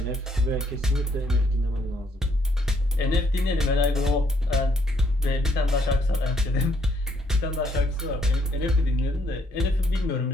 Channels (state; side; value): normal; both; correlation 0.69